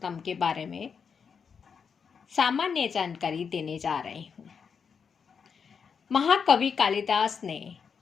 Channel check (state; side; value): quieter; right; 6.3 dB